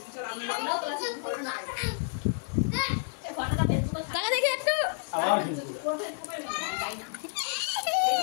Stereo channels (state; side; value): silent; right; digital silence